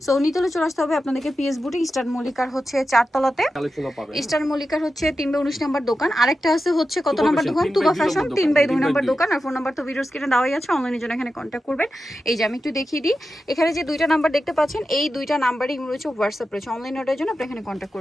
সো নিতলে চলে আসতে হবে আপনাদেরকে পিএস বুটিক, ইস্টার্ন মল্লিকার হচ্ছে 4 তলাতে। ইস্টার্ন মল্লিকার হচ্ছে 3/19 নাম্বার দোকান। আরেকটা আছে হচ্ছে কত নাম্বার দোকান? তুবা ফ্যাশন 3/2 নাম্বার দোকান। আর ফোন নাম্বার তো ভিডিও স্ক্রিনে দেওয়াই আছে, অনলাইনের জন্য এখানে কন্ট্যাক্ট করবেন। এই যে আমি একটু দেখিয়ে দিই, এখানে যে দুইটা নাম্বার দেখতে পাচ্ছেন, এই দুইটা নাম্বারই রয়েছে হোয়াটসঅ্যাপ রয়েছে, অনলাইন অর্ডারের জন্য আপনি এখানে কন্ট্যাক্ট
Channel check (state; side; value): normal; both; correlation 0.91